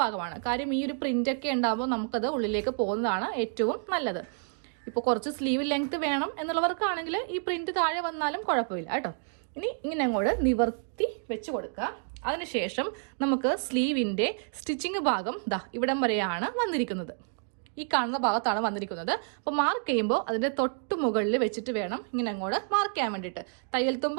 ഭാഗമാണ്. കാര്യം ഈ ഒരു പ്രിന്റ് ഒക്കെ ഉണ്ടാകുമ്പോൾ നമുക്കത് ഉള്ളിലേക്ക് പോകുന്നതാണ് ഏറ്റവും നല്ലത്. ഇപ്പോൾ കുറച്ച് സ്ലീവ് ലെങ്ത് വേണം എന്നുള്ളവർക്കാണെങ്കിൽ ഈ പ്രിന്റ് താഴെ വന്നാലും കുഴപ്പമില്ല കേട്ടോ. ഇനി ഇങ്ങനെ അങ്ങോട്ട് നിവർത്തി വെച്ച് കൊടുക്കുക. അതിനുശേഷം നമുക്ക് സ്ലീവിന്റെ സ്റ്റിച്ചിങ് ഭാഗം ഇവിടം വരെയാണ് വന്നിരിക്കുന്നത്. ഈ കാണുന്ന ഭാഗത്താണ് വന്നിരിക്കുന്നത്. അപ്പോൾ മാർക്ക് ചെയ്യുമ്പോൾ അതിന്റെ തൊട്ട് മുകളിൽ വെച്ചിട്ട് വേണം ഇങ്ങനെ അങ്ങോട്ട് മാർക്ക് ചെയ്യാൻ വേണ്ടിയിട്ട്. തയ്യൽ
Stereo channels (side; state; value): left; silent; 58 dB below the other